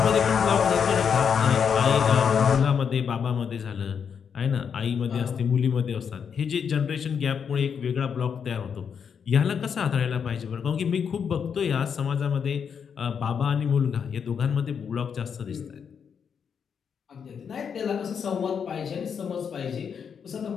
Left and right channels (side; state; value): right; quieter; 7.0 dB